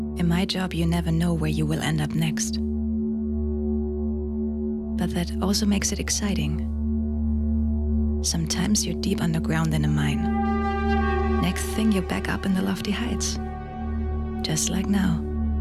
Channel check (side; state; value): both; identical; correlation 1.00